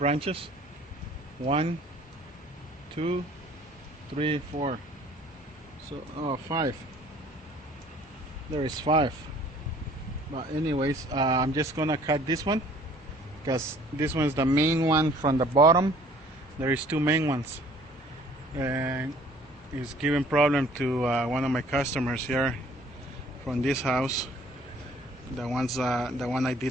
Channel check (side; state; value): both; normal; correlation 0.55